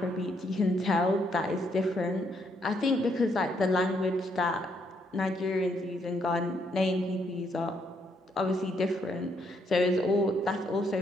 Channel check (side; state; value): both; normal; correlation 0.73